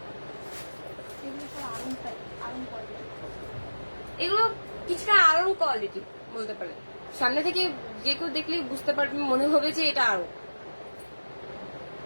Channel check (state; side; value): inverted; both; correlation -1.00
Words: এগুলো কিছুটা আরং কোয়ালিটি বলতে পারেন, সামনে থেকে যে কেউ দেখলে বুঝতে পারবে, মনে হবে যে এটা আরং।